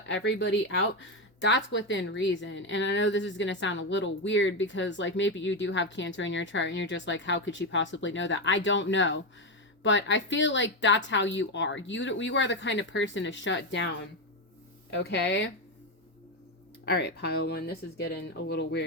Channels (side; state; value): both; normal; correlation 0.10